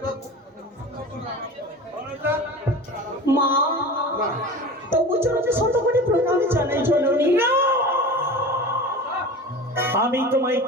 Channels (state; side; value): normal; both; correlation 0.34